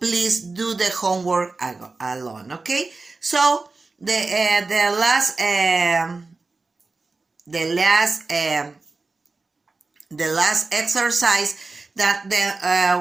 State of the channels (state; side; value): quieter; left; 3.7 dB